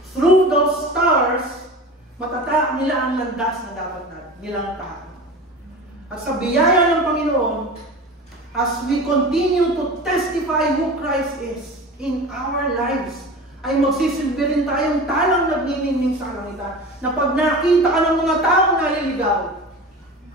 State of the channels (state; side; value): normal; both; correlation 0.33